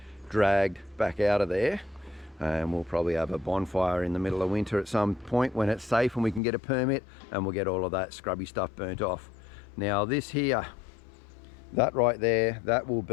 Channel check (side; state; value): right; drops out; at 6.4 s